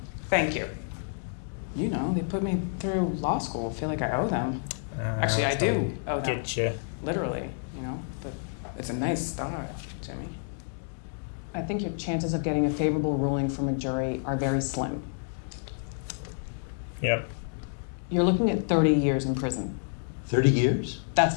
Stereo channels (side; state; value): right; silent; digital silence